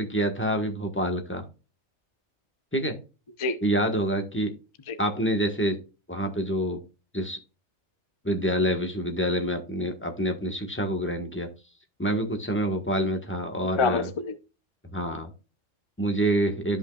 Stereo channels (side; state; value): both; normal; correlation 0.26